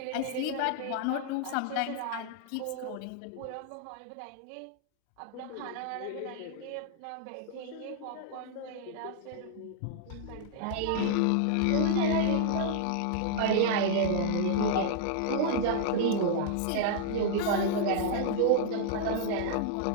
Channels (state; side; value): different; both; correlation -0.01